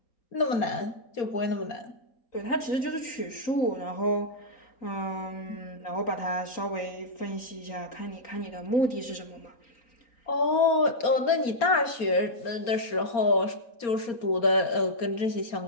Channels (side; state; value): right; late; 4.3 ms